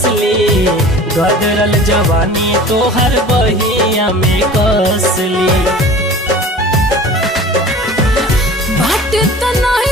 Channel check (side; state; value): both; normal; correlation 0.41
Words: गदरल जवानी तो हर बहिया में कसली। बाटे